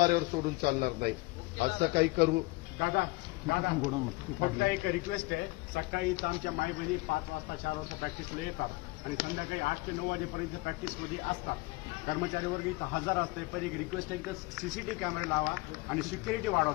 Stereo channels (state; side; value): quieter; right; 23.3 dB